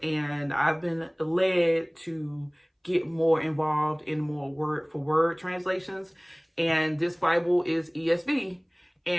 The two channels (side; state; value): both; identical; correlation 1.00